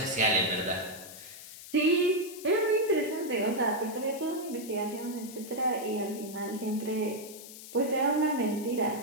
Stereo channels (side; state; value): left; noise; hiss, 14 dB below the sound